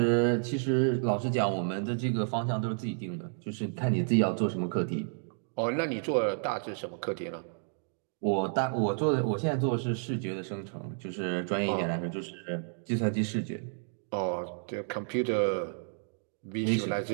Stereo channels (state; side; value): silent; left; digital silence